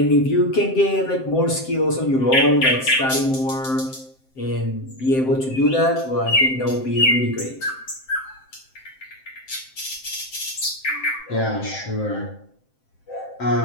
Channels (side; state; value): right; late; 7.7 ms